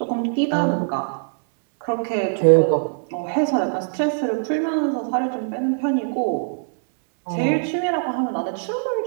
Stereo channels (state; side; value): silent; left; 64 dB below the other